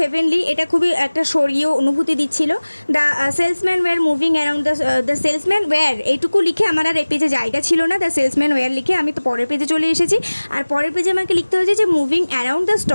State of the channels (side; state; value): both; inverted; correlation -1.00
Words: এটা খুবই একটা স্বর্গীয় অনুভূতি দিচ্ছিল। The salesman were moving around the salesman were, এইটুকু লিখে আমার আর এই পেজে জায়গা ছিল না। দ্য সেলসম্যান ওয়্যার লিখে আমি তো পরের পেজে চলে এসেছি, আর পরের পেজে আমাকে লিখতে হয়েছে যে মুভিং অ্যারাউন্ড দ্য